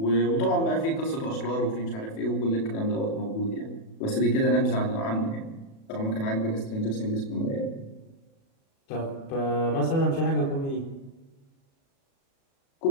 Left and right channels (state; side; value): late; right; 36 ms